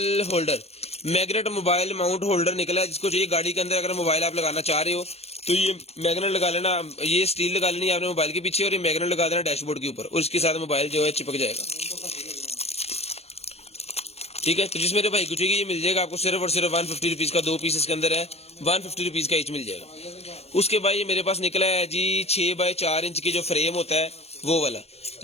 holder, magnet mobile mount holder निकला है, जिसको चाहिए गाड़ी के अंदर अगर मोबाइल आप लगाना चाह रहे हो तो ये मैग्नेट लगा लेना, ये स्टील लगा लेनी है आपने मोबाइल के पीछे और ये मैग्नेट लगा देना डैशबोर्ड के ऊपर और इसके साथ मोबाइल जो है चिपक जाएगा। ठीक है, तो जिस मेरे भाई को चाहिए ये मिल जाएगा आपको सिर्फ और सिर्फ 150 रुपीज का, 2 पीस इसके अंदर है, 150 रुपीज का ईच मिल जाएगा। उसके बाद ये मेरे पास निकला है जी 6x4 इंच की जो फ्रेम होता है वो वाला,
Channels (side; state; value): right; late; 0.30 ms